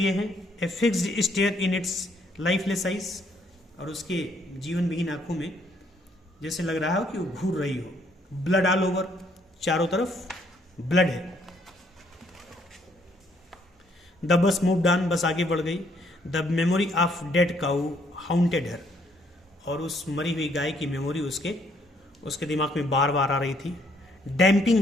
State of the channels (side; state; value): both; normal; correlation 0.68